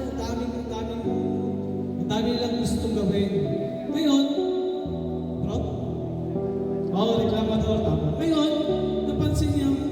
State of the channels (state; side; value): identical; both; correlation 1.00